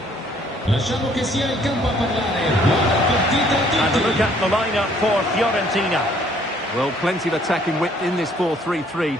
Lasciamo che sia il campo a parlare. Buona partita a tutti. And a look at the lineup for Fiorentina. Well, plenty of attacking width in this 4-3-3,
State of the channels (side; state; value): both; normal; correlation 0.62